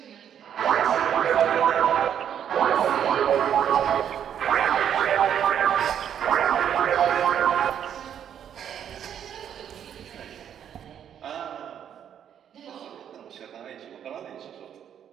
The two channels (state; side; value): quieter; left; 9.2 dB